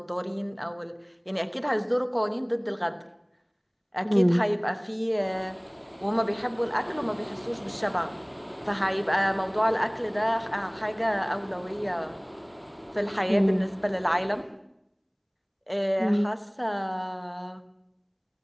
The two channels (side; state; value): both; identical; correlation 1.00